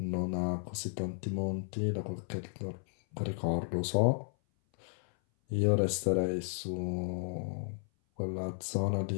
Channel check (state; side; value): silent; right; 55 dB below the other